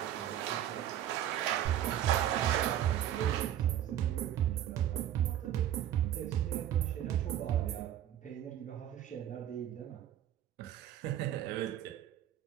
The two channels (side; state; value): left; quieter; 11.2 dB